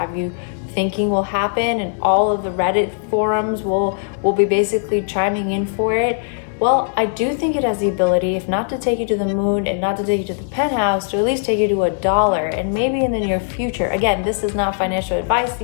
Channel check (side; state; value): right; silent; 64 dB below the other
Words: you thinking will happen, and all of the Reddit forums will be basically chiming in for it? Well, I do think it has the ability, if not to take you to the moon and not to take you to the penthouse, to at least take you to $1, and maybe in the near future. Again, this is not financial advice.